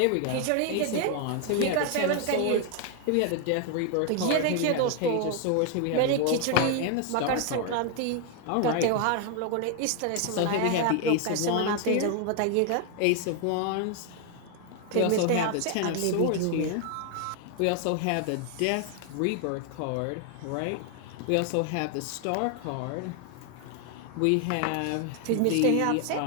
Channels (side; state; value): both; different; correlation 0.00